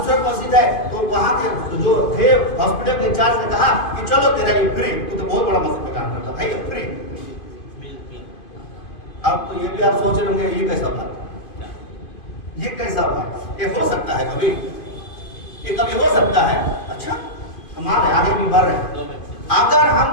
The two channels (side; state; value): right; late; 2.5 ms